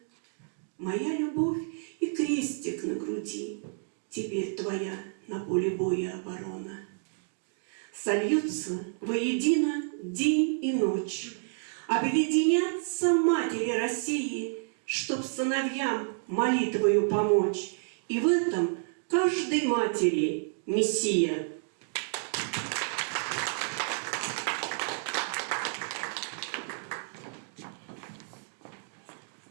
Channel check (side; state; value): left; silent; digital silence